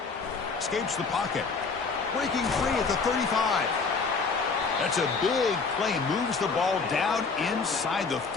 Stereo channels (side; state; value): right; quieter; 4.7 dB